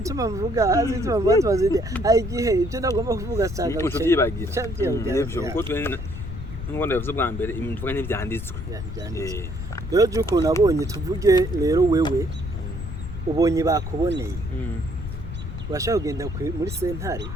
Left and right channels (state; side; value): noise; left; rumble, 7 dB below the sound